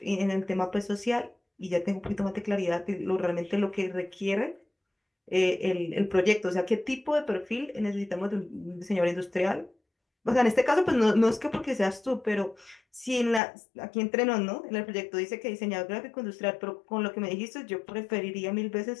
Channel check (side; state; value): right; drops out; at 13.4 s